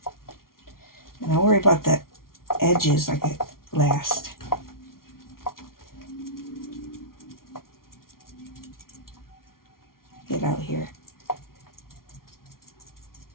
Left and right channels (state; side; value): late; right; 0.93 ms